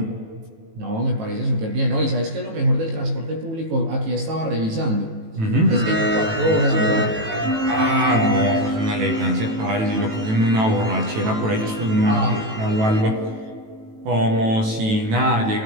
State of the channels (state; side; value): late; left; 18 ms